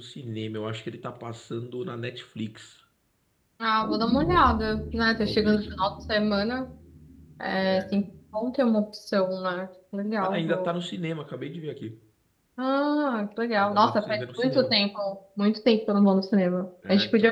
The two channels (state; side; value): identical; both; correlation 1.00